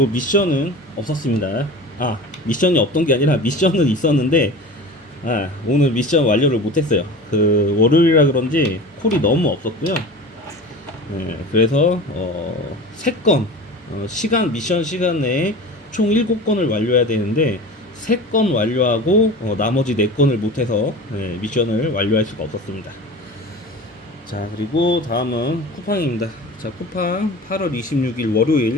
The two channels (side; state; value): both; normal; correlation 0.35